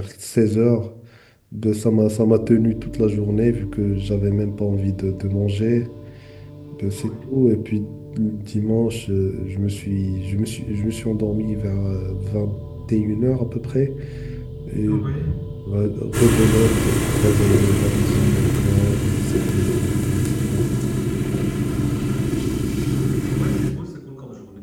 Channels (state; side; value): identical; both; correlation 1.00